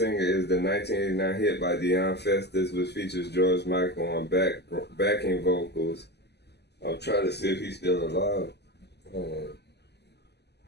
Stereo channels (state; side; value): late; right; 0.49 ms